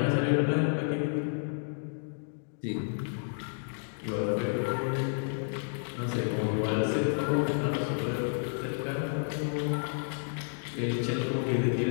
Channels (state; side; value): silent; right; digital silence